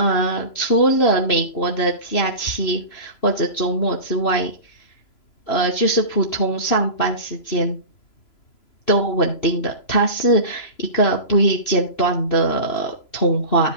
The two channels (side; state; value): right; late; 3.0 ms